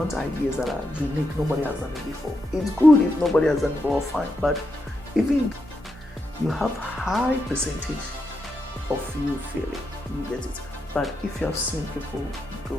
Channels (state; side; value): normal; both; correlation 0.84